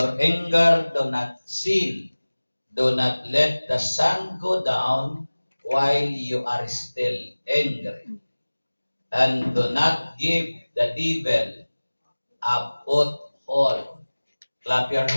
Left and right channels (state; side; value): inverted; both; correlation -1.00